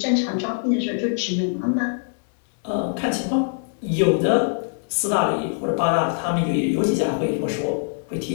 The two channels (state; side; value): silent; right; digital silence